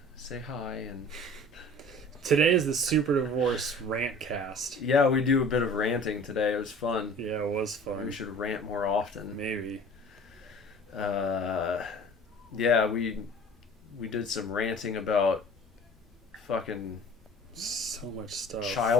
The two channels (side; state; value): both; normal; correlation 0.45